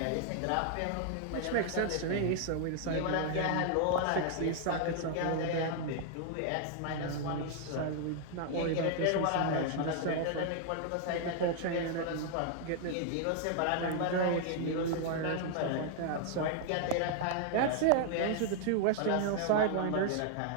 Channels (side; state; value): both; different; correlation 0.00